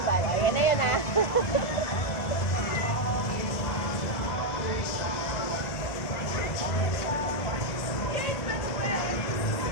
O, yan na yun ah.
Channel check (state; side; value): late; right; 1.8 ms